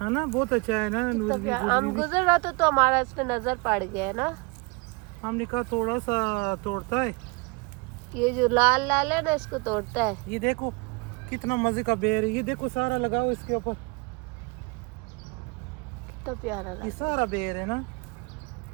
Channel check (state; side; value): quieter; left; 28.9 dB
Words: है ना, बहुत अच्छा है ना। तो क्या हम गुजर रहा था तो हमारा इस पे नजर पड़ गया है ना। हमने कहा थोड़ा सा तोड़ता है, ये जो लाल लाल है ना इसको तोड़ता है। ये देखो कितना मजे का बेर है, ये देखो सारा लगाओ इसके ऊपर, कितना प्यारा ये लग सारा बेर है ना।